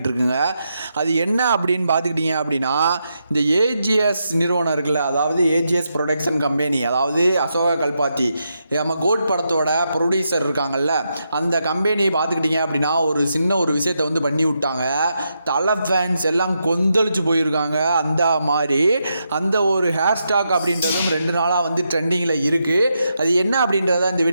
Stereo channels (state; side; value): inverted; both; correlation -0.83